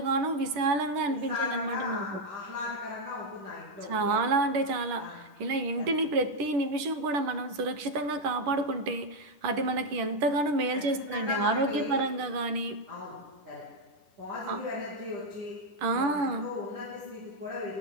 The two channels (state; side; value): late; left; 10 ms